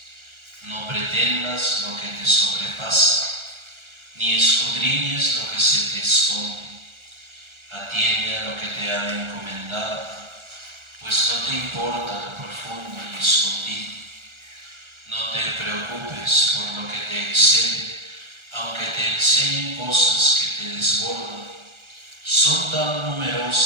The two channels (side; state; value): left; late; 1.4 ms